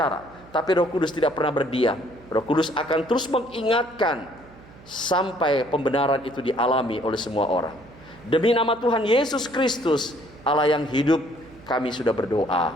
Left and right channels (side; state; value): right; noise; hum, 22 dB below the sound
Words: tapi Roh Kudus tidak pernah berdiam. Roh Kudus akan terus mengingatkan sampai pembenaran itu dialami oleh semua orang. Demi nama Tuhan Yesus Kristus, Allah yang hidup, kami sudah berdoa.